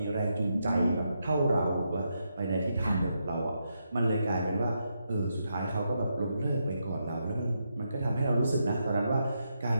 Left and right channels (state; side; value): inverted; both; correlation -0.83